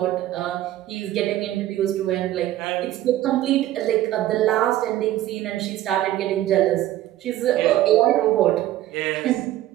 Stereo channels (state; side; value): quieter; left; 14.0 dB